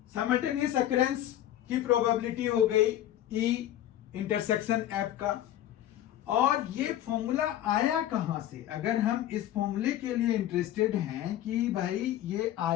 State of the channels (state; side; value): quieter; right; 12.5 dB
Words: साइमल्टेनियस अकरेंस की प्रोबेबिलिटी हो गई ई इंटरसेक्शन एफ का। और ये फॉर्मूला आया कहां से, अगर हम इस फॉर्मूले के लिए इंटरेस्टेड हैं कि भाई ये